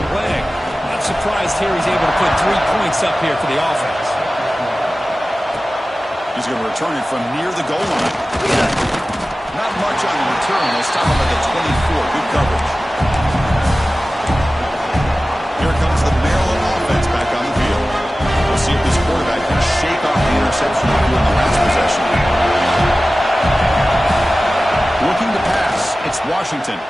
leg. Not surprised here he's able to put 3 points up here for the offense. He's going to return it from near the goal line. Not much on the return. They'll stop him at the 24. Good coverage. Here comes the Maryland offense back on the field. We'll see if this quarterback can shake off the interception in the last possession. Looking to pass. It's Washington.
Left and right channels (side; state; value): both; normal; correlation 0.96